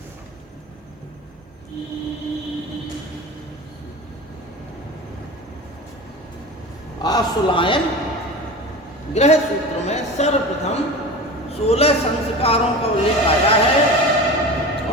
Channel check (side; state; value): both; normal; correlation 0.31